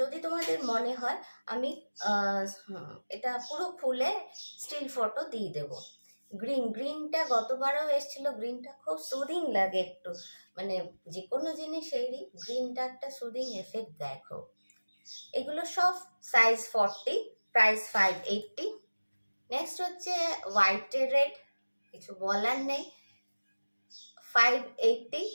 তোমাদের মনে হয় আমি এটা পুরো খুলে স্টিল ফটো দিয়ে দেবো। গ্রিনটা গতবারও এসেছিল, গ্রিনটা খুব সুদিং লাগে একটু, মানে যে কোনো জিনিসেরই গ্রিনটা একটা সুদিং এফেক্ট দেখো। এগুলো সব সাইজ 40, প্রাইস 580। নেক্সট হচ্ছে হোয়াইট রেড, কিছু বলার নেই, 580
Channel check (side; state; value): both; inverted; correlation -1.00